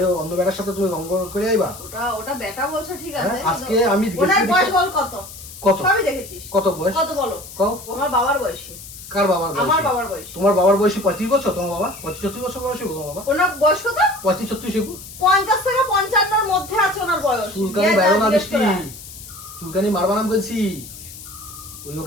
অন্য বেটার সাথে তুমি রঙ্গ করে আইবা। ওটা বেটা বলছো ঠিক আছে, হ্যাঁ, আজকে আমি ওনার গেছি বয়স দেখে- বল কত? কত? সবই দেখেছিস। কত বয়স? কত বলো? কও। আমার বাবার বয়সী। কার বাবার বয়স? আমার বাবার বয়স। তোমার বাবার বয়সী 35 বছর, তোমার বাবা 35-36 বছর বয়সী তোমার বাবা। ওনার বয়স কত? 35-36 50 থেকে 55 মধ্যে আছে ওনার বয়স। চুলকানি গিয়ে বাইরো না জিজ্ঞেস বৃষ্টি, করে আয়। চুলকানি মারবা না বলছি। ওই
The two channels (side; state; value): left; noise; hiss, 15 dB below the sound